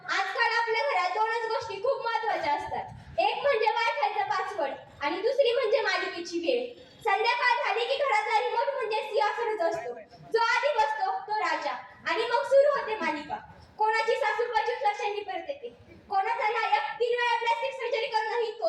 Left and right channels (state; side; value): identical; both; correlation 1.00